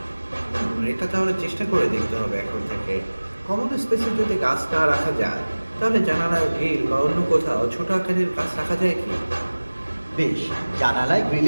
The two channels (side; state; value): both; inverted; correlation -1.00